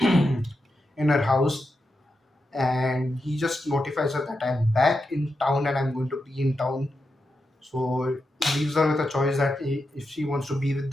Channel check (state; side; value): normal; both; correlation 0.87